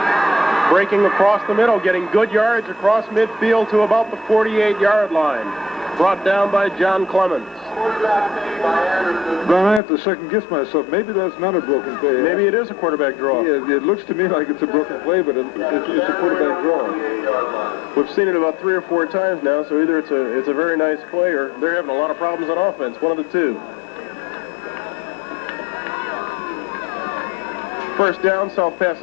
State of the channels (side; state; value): right; drops out; at 9.8 s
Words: Breaking across the middle, getting good yards across midfield to about the 48-yard line. Brought down by John Clemens. Ron, I have to second-guess myself. Maybe that's not a broken play. Maybe it is a quarterback draw. Yeah, it looks to me like it's a broken play, but it's a quarterback draw. We've seen it about 3 or 4 times now, so either it's a very nice play or they're having a lot of problems on offense. One of the two. First down, South